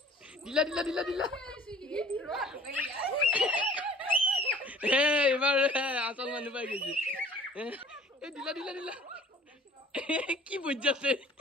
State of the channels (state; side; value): normal; both; correlation 0.50